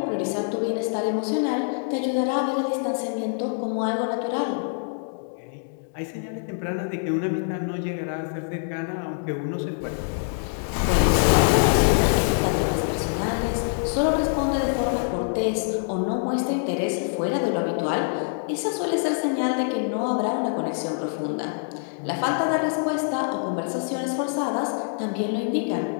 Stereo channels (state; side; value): silent; right; digital silence